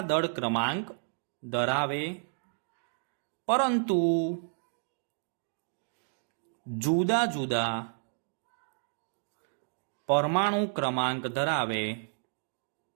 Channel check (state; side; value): silent; left; digital silence